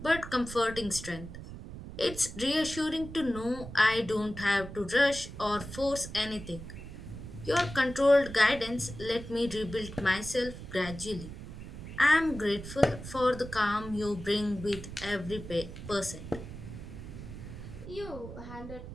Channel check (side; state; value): right; noise; rumble, 11 dB below the sound